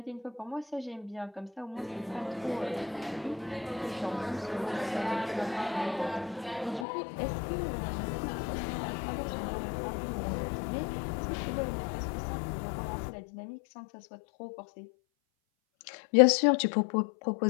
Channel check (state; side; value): drops out; right; at 6.9 s